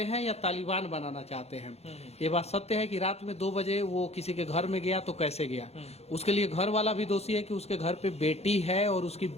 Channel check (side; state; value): right; late; 0.30 ms